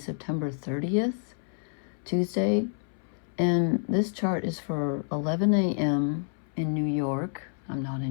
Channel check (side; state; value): right; silent; 59 dB below the other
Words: 30th, Tuesday. And this chart is for 11 a.m. in New York. I'm not